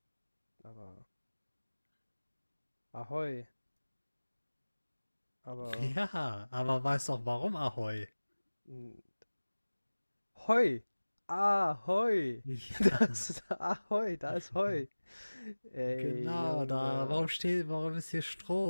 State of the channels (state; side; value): inverted; both; correlation -1.00